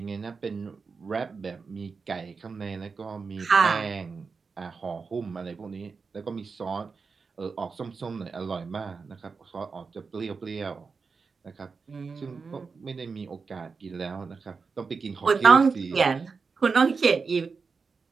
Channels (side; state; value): left; quieter; 4.9 dB